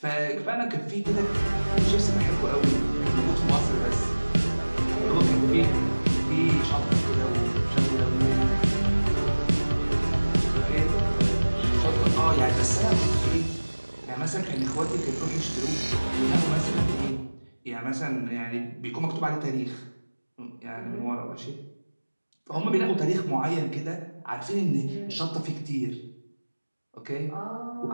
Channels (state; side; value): inverted; both; correlation -1.00